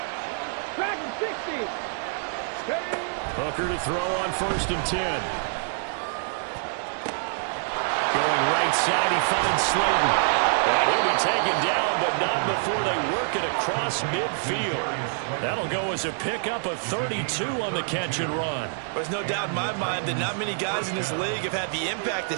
Hooker to throw on 1st and 10. Going right side, he finds Slayton. And he'll be taken down, but not before they work it across midfield. That'll go as a pickup of 32 on the catch and run. There's no doubt in my mind that not many guys in this league have had the impact that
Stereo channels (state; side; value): silent; left; digital silence